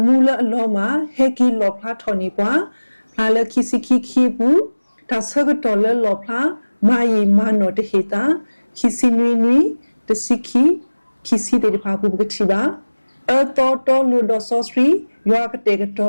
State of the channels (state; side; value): inverted; both; correlation -1.00